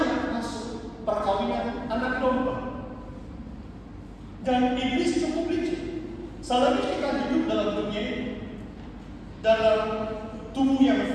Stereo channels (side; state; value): both; identical; correlation 1.00